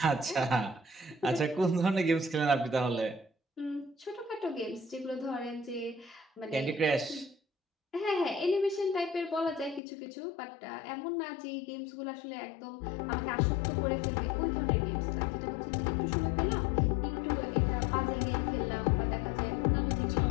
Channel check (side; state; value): right; drops out; at 9.8 s